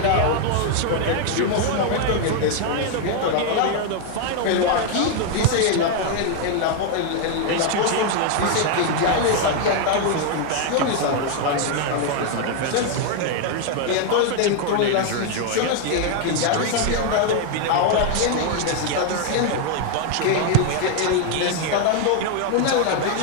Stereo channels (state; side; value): different; both; correlation 0.00